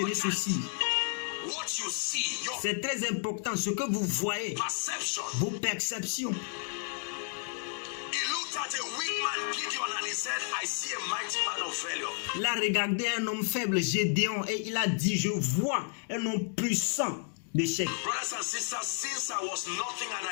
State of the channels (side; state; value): right; quieter; 38.8 dB